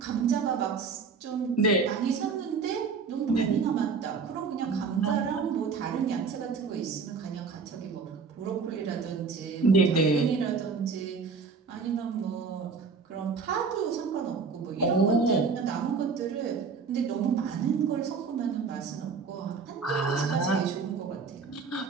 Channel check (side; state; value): left; quieter; 5.1 dB